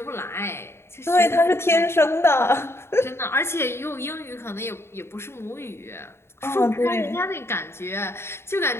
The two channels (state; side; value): late; right; 0.12 ms